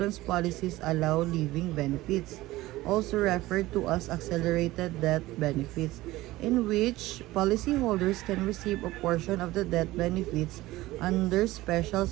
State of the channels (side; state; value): left; quieter; 17.8 dB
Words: policies allow living benefits, also referred to as accelerated death benefits, in which policyholders can receive a portion of the death benefits under special